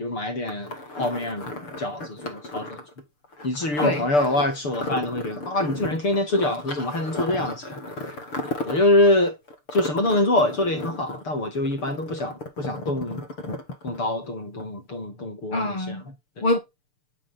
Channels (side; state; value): right; late; 6.8 ms